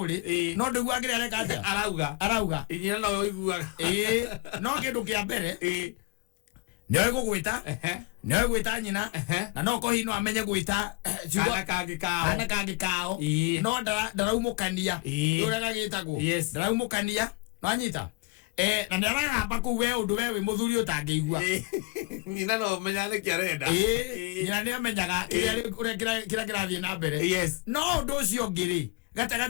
no ndoigua kiri areka atia arauga inyina no iguaga no kindu kia mbere nyoe gugwita nyoe gwita nyina na no ko hino amenye gwita ana kangi kao no ndaraumukania ura gagitagwo ndaraumukania wanyita na ndaragamba ku we undu we muthuri utangeigua nyina no menyane kiarenda nyina ne amenyaga kira kirathie na mbere no undu ucio ngiri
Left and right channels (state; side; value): quieter; right; 23.4 dB